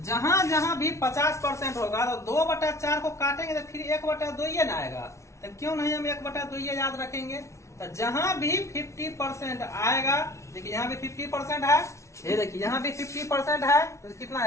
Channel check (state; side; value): late; right; 0.14 ms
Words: जहां जहां भी 50% होगा तो 2/4 को काटेंगे तो फिर 1/2 ना आएगा। तो क्यों नहीं हम 1/2 याद रखेंगे। तो जहां भी 50% आएगा, देखिए यहाँ भी 50% है, ये देखिए यहाँ भी 50% है तो कितना